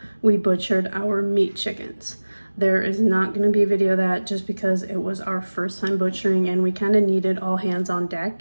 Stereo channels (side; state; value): both; inverted; correlation -1.00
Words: we butchered our meat chickens. There is not going to be a video of that just because it was our first time butchering and we kind of needed all hands on